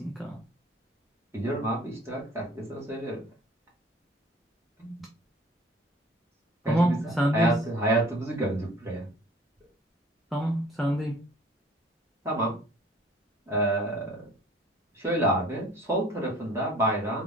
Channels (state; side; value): normal; both; correlation 0.50